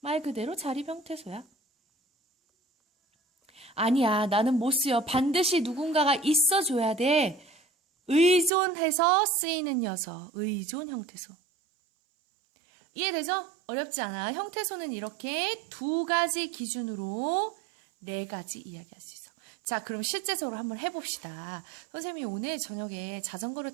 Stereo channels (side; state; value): left; drops out; at 8.5 s